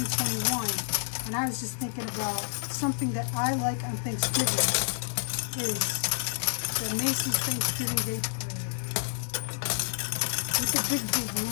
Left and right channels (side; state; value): right; silent; digital silence